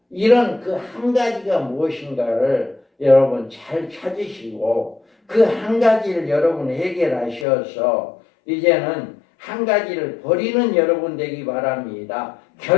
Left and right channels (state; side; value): drops out; right; at 7.5 s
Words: 이런 그 한 가지가 무엇인가를 여러분 잘 찾으시고 그 한 가지를 여러분 해결하셔서 이제는 한 가지를 버리는 여러분 되기 바랍니다.